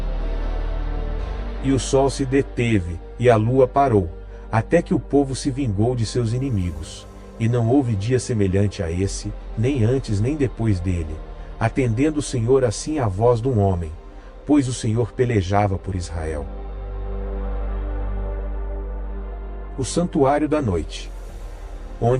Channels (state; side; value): identical; both; correlation 1.00